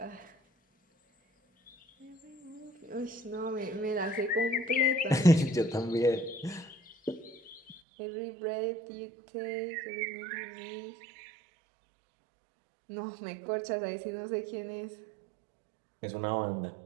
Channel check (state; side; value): drops out; left; at 7.8 s